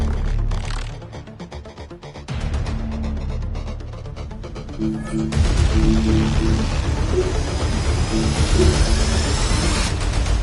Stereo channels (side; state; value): both; identical; correlation 1.00